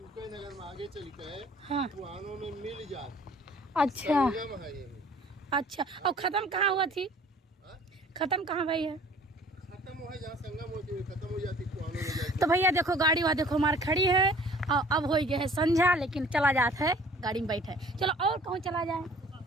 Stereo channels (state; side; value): normal; both; correlation 0.52